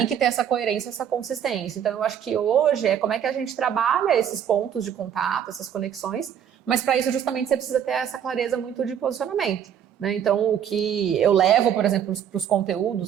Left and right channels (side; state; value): left; quieter; 8.9 dB